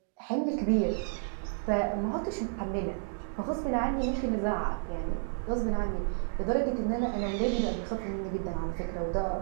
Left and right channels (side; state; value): left; silent; digital silence